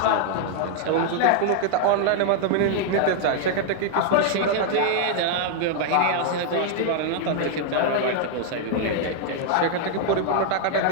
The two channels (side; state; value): both; different; correlation 0.00